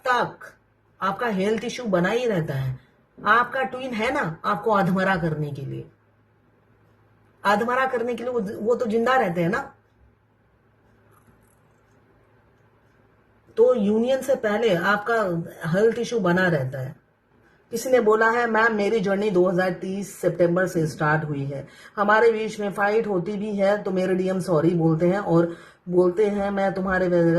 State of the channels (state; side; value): identical; both; correlation 1.00